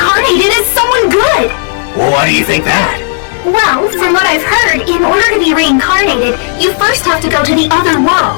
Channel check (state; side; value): silent; right; digital silence